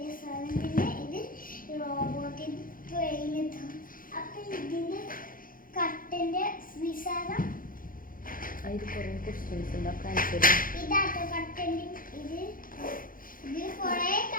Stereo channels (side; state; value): right; late; 0.40 ms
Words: സാധനം, പിന്നെ ഇത് റോബോട്ടിന്റെ ട്രെയിൻ. അപ്പൊ ഇതിന്റെ കട്ടന്റെ വിശാലം ഇതാട്ടോ കട്ടന്റെ. ഇത് കൊറേ